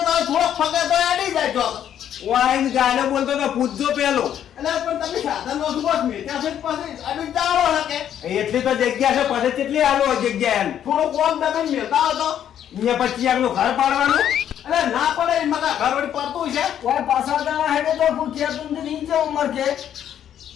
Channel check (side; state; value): right; quieter; 10.0 dB